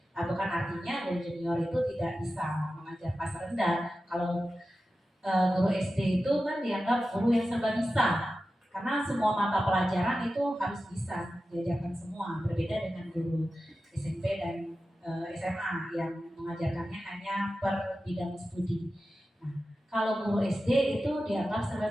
Bukan artinya guru junior itu tidak bisa mengajar kelas rendah. Kalau guru SD itu kan dianggap guru yang serba bisa, karena semua mata pelajaran itu harus bisa diajarkan semua. Berbeda dengan guru SMP dan SMA yang mengajarkannya hanya per bidang studi. Nah, kalau guru SD itu dianggap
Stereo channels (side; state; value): both; normal; correlation 0.93